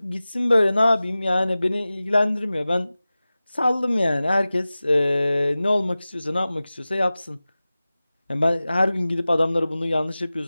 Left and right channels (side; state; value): both; inverted; correlation -0.97